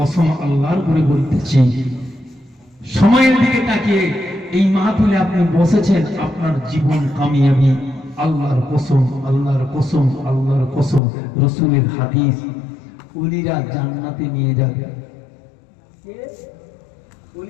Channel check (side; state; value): right; drops out; at 11.0 s